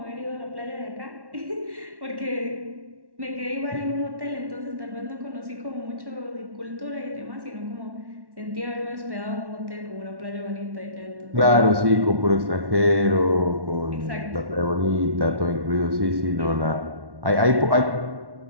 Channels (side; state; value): left; late; 1.1 ms